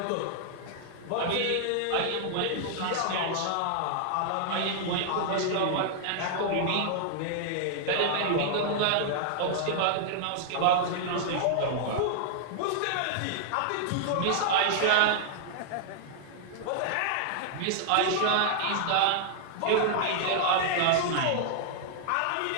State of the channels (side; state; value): both; different; correlation -0.01